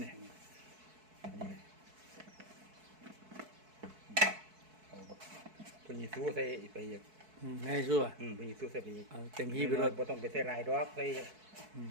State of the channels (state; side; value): late; left; 4.6 ms